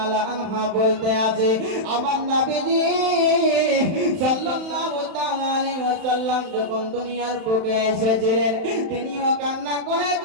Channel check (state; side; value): late; left; 31 ms